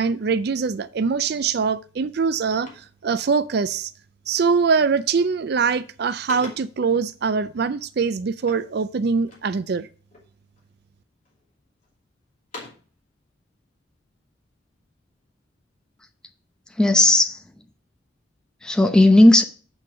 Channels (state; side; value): normal; both; correlation 0.41